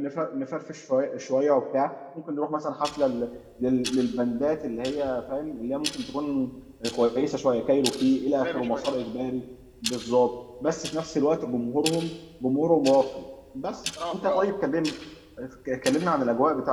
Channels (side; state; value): both; identical; correlation 1.00